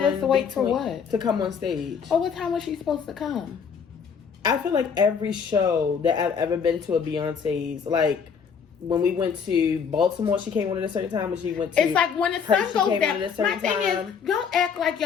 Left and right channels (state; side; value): quieter; right; 6.5 dB